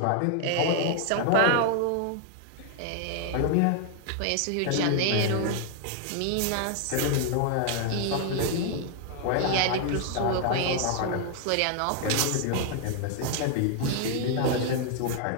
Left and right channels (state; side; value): different; both; correlation 0.00